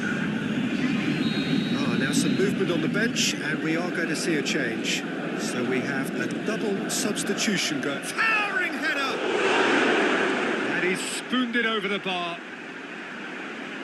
Now some movement on the bench, and we are going to see a change. So we have a double substitution going. Towering header! And he's spooned it over the bar.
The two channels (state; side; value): identical; both; correlation 1.00